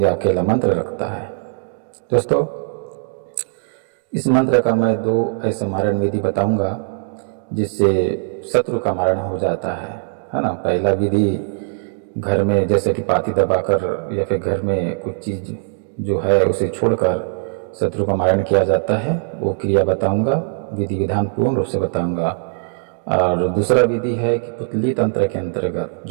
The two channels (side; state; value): left; silent; digital silence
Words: अकेला मंत्र रखता है। दोस्तों, इस मंत्र का मैं 2 ऐसे मारण विधि बताऊंगा जिससे शत्रु का मारण हो जाता है ना। पहला विधि घर में जैसे कि पाती दबाकर या फिर घर में कुछ चीज़ जो है उसे छोड़कर शत्रु का मारण किया जाता है, वो क्रिया बताऊंगा, विधि विधान पूर्ण रूप से बताऊंगा। और दूसरा विधि है कि पुतली तंत्र के अंतर्गत